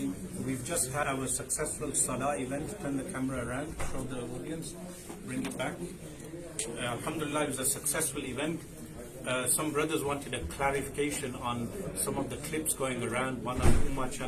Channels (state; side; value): identical; both; correlation 1.00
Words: We've just had our successful Salah event. Turn the camera around, show the audience, bring it back. Alhamdulillah, it was a successful event. Some brothers wanted a clarification on some of the clips going around, one on the Ummah